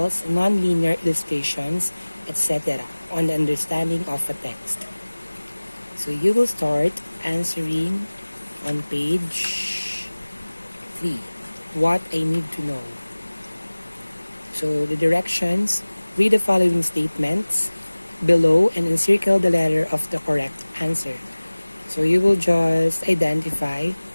non-linear illustrations, etc. on the understanding of a text. So you will start answering on page 3. What I need to know. So the directions, read the following statements below and encircle the letter of the correct answer. So you will just identify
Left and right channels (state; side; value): inverted; both; correlation -1.00